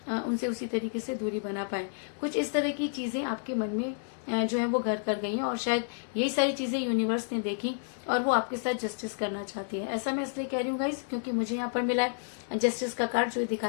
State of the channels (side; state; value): right; silent; digital silence